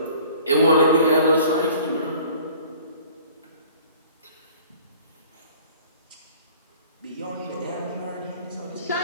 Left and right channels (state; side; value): inverted; both; correlation -0.49